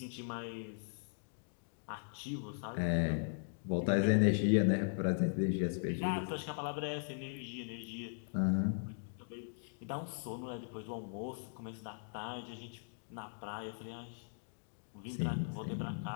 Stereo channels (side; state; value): right; silent; digital silence